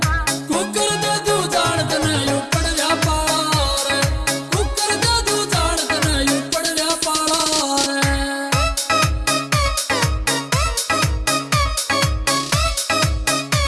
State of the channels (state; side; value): identical; both; correlation 1.00